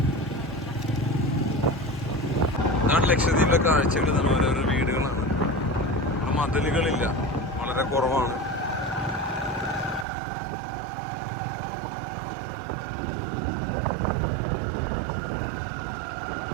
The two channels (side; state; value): left; drops out; at 10.1 s